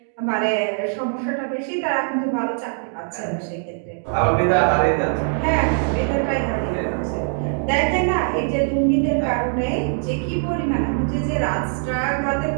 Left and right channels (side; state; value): left; silent; 64 dB below the other